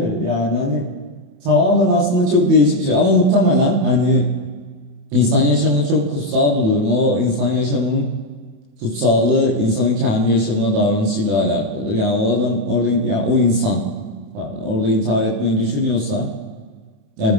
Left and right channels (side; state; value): left; late; 28 ms